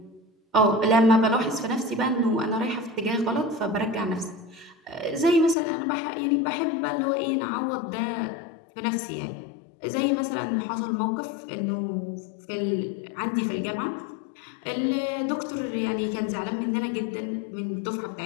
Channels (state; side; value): drops out; right; at 5.6 s